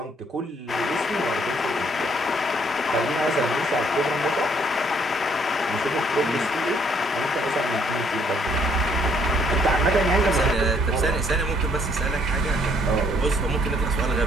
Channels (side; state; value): both; normal; correlation 0.66